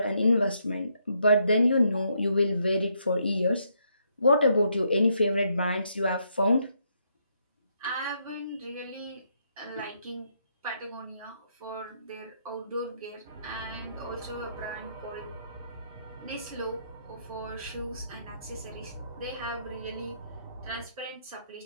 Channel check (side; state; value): both; inverted; correlation -0.75